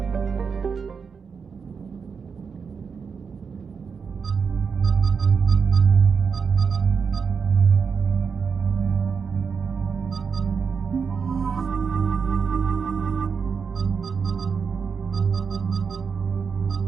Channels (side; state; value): left; quieter; 5.9 dB